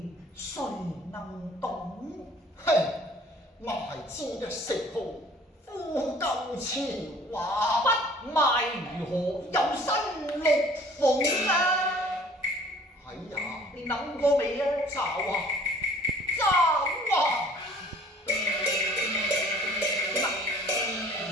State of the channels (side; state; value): both; normal; correlation 0.53